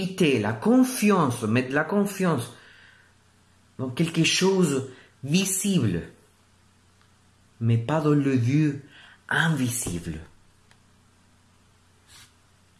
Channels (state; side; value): identical; both; correlation 1.00